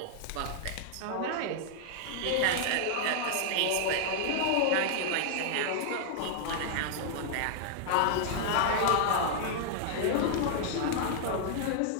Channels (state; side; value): different; both; correlation -0.01